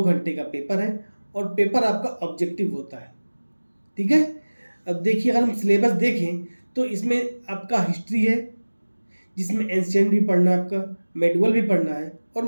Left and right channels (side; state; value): both; inverted; correlation -1.00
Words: घंटे का पेपर है और पेपर आपका ऑब्जेक्टिव होता है। ठीक है। अब देखिए अगर हम सिलेबस देखें तो इसमें आपका हिस्ट्री है, जिसमें एंशिएंट भी पढ़ना है, आपका मेडुअल भी पढ़ना है और